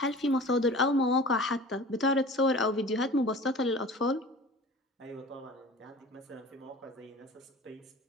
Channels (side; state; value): both; normal; correlation 0.41